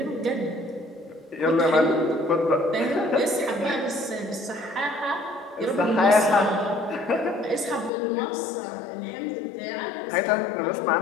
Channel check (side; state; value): right; drops out; at 7.9 s